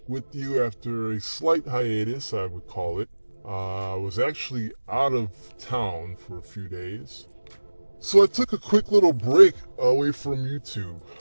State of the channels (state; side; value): inverted; both; correlation -1.00